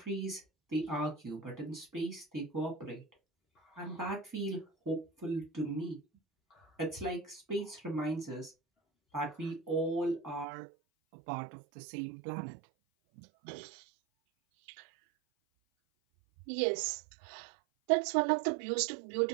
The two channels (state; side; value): drops out; left; at 10.5 s